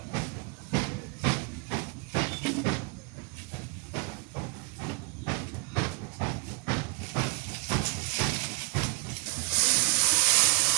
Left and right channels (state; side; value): quieter; left; 33.1 dB